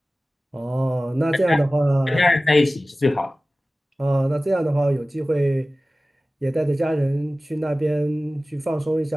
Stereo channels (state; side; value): normal; both; correlation 0.97